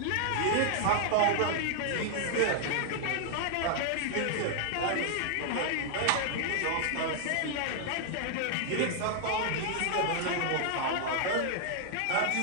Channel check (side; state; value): both; different; correlation 0.00